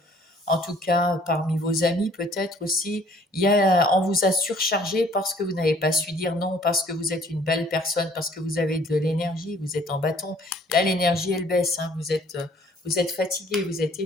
en tout cas parmi vos amis peut-être aussi. On vous a surchargé parce que vous n'avez pas su dire non, parce que vous êtes une belle personne, parce que vous avez de l'énergie, vous êtes en bâton. Là, l'énergie, elle baisse, hein, vous êtes fatigué, vous êtes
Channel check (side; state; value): both; normal; correlation 0.57